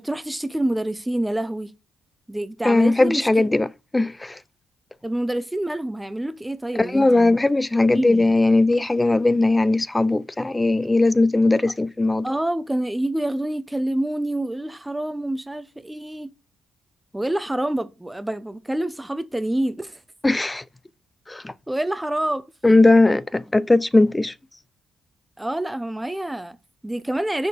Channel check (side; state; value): both; normal; correlation 0.98